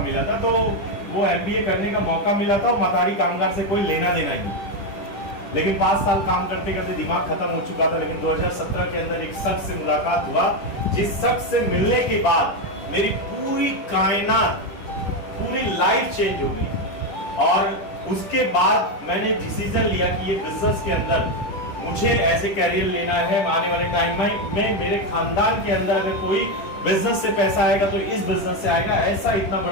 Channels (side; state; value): right; late; 10 ms